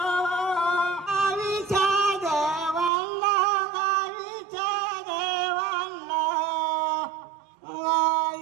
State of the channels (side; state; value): left; drops out; at 2.9 s